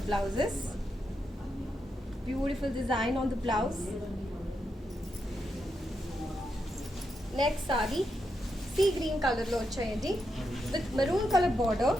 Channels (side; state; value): both; normal; correlation 0.84